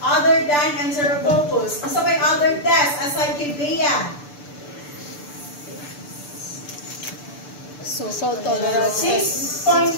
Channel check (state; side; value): late; right; 6.8 ms